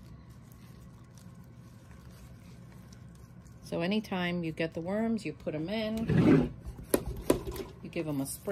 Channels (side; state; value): both; identical; correlation 1.00